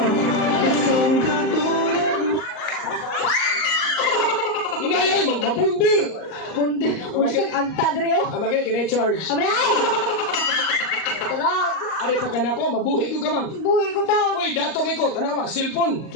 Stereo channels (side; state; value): right; late; 38 ms